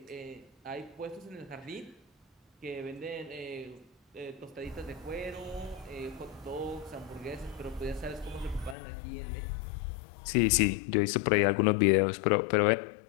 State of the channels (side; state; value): right; drops out; at 8.8 s